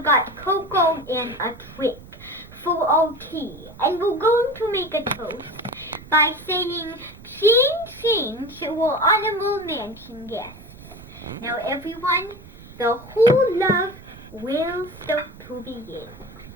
got cocoa and a trick for our tea. And we're going to make a toast by saying, ching ching to our honorable mansion guests. Now everyone, the whole love will start to begin.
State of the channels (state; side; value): noise; right; rumble, 19 dB below the sound